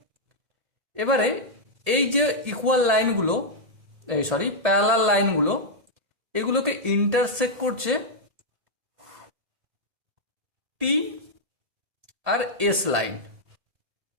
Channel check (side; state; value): left; late; 1.7 ms